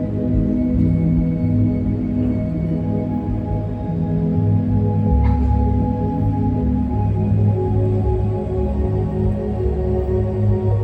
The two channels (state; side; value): identical; both; correlation 1.00